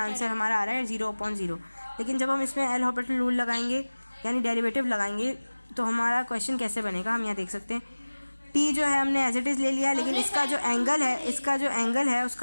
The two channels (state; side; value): inverted; both; correlation -1.00